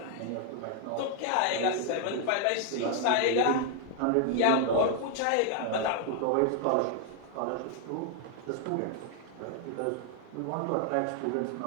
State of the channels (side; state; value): both; different; correlation 0.00